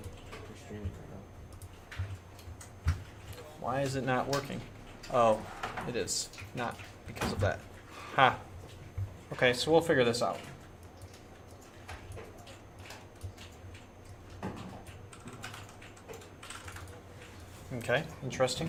Why is it not working? Oh, it is. Not because of that. Ha. Okay, so we'll figure this out. Okay, interesting.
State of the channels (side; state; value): both; identical; correlation 1.00